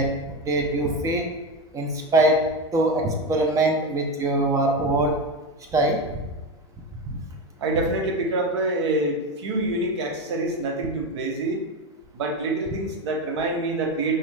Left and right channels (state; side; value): normal; both; correlation 0.17